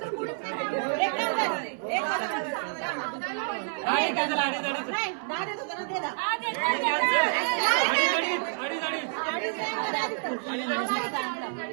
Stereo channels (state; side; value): silent; left; 59 dB below the other